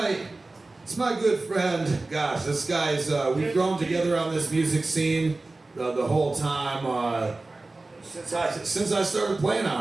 it's my good friend. Gosh, this guy's, we've grown together on this music scene the whole time. Since I started playing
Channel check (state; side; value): quieter; left; 3.2 dB